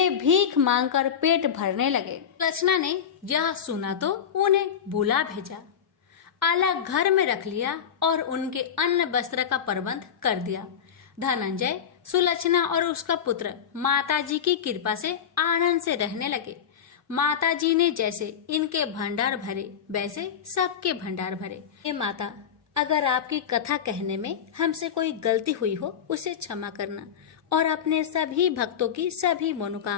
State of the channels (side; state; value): right; quieter; 8.1 dB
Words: भीख मांगकर पेट भरने लगे। लक्षणा ने यह सुना तो उन्हें बुला भेजा, अलग घर में रख लिया और उनके अन्न वस्त्र का प्रबंध कर दिया। धनंजय, सुलक्षणा और उसका पुत्र माता जी की कृपा से आनंद से रहने लगे। माता जी ने जैसे इनके भंडार भरे वैसे सबके भंडार भरे। हे माता, अगर आपकी कथा कहने में हमसे कोई गलती हुई हो उसे क्षमा करना और अपने सभी भक्तों की सभी